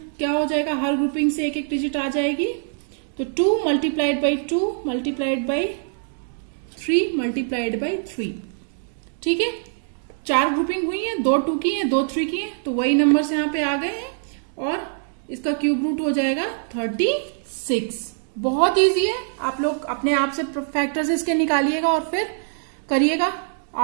क्या हो जाएगा, हर ग्रुपिंग से एक एक डिजिट आ जाएगी। तो 2 multiplied by 2 multiplied by 3 multiplied by 3, ठीक है। 4 ग्रुपिंग हुई है, 2 2 की है, 2 3 की है, तो वही नंबर्स यहाँ पे आ गए हैं और इसका क्यूब रूट हो जाएगा 36। बहुत इजी है, आप लोग अपने आप से फैक्टर्स इसके निकालिएगा और फिर करिएगा,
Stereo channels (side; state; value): left; silent; digital silence